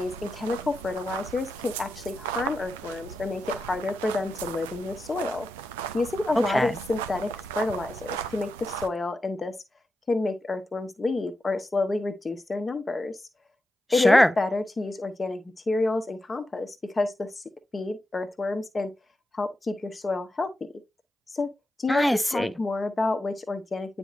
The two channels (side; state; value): both; normal; correlation 0.89